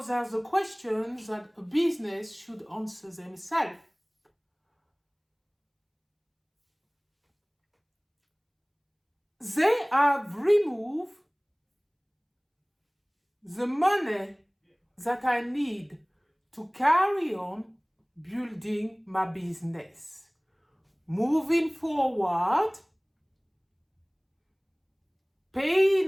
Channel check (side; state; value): both; identical; correlation 1.00